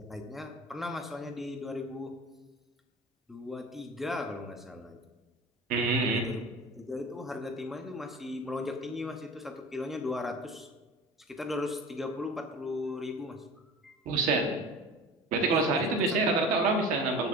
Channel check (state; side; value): normal; both; correlation 0.37